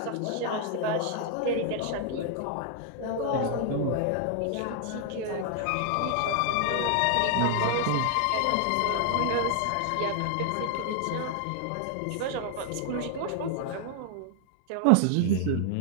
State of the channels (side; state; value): both; different; correlation 0.00